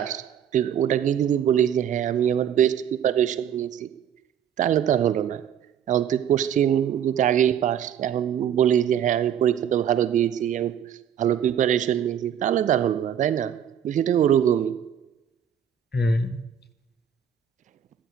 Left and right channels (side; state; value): left; quieter; 8.9 dB